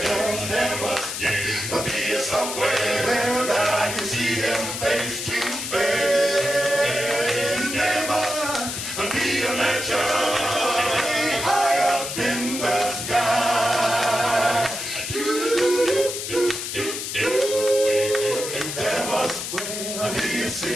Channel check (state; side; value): noise; left; hiss, 5 dB below the sound